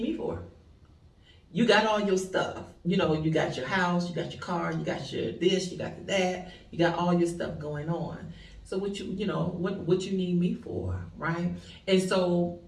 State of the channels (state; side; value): identical; both; correlation 1.00